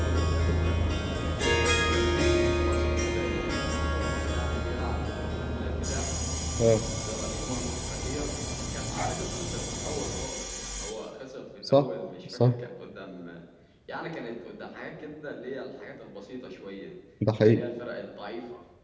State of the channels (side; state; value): both; identical; correlation 1.00